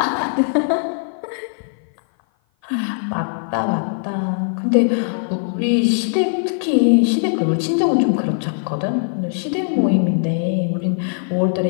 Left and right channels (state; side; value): silent; right; 55 dB below the other